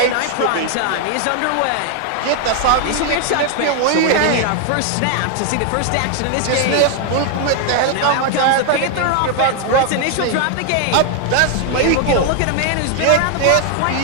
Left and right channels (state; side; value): different; both; correlation 0.00